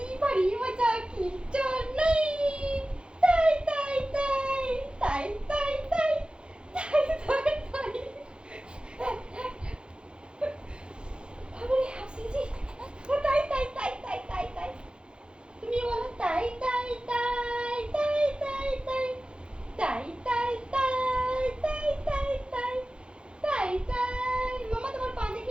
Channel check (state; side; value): late; left; 0.053 ms